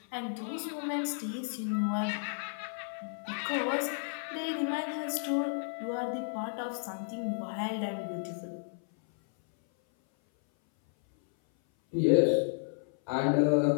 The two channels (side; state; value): right; silent; 56 dB below the other